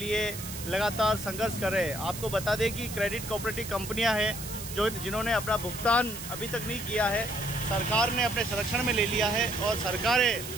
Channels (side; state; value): right; noise; hiss, 10 dB below the sound